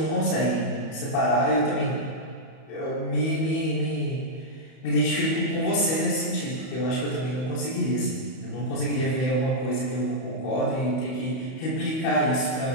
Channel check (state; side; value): late; right; 31 ms